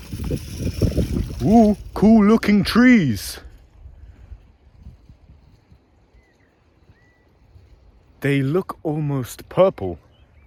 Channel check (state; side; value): identical; both; correlation 1.00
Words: Ooh, cool looking trees. They look almost purple.